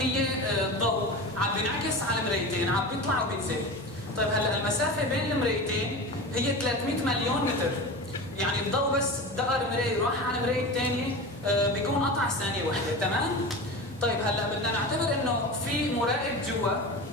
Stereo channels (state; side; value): normal; both; correlation 0.29